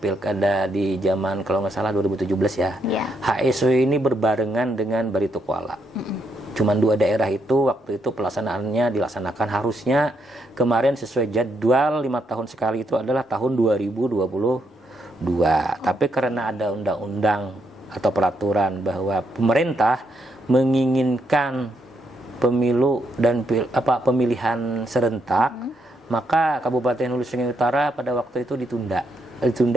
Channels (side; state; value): both; normal; correlation 0.77